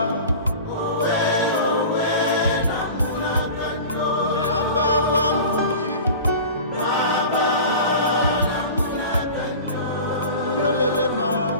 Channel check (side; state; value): both; inverted; correlation -0.36